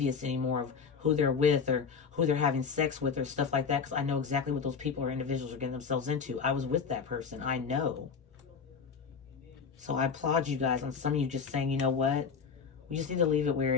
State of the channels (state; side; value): quieter; right; 6.0 dB